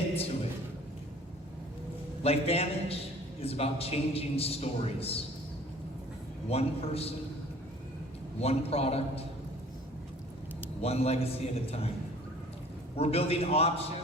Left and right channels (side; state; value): both; normal; correlation 0.50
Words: to it. LifeVantage is about changing stories. One person, one product, one legacy at a time. We're building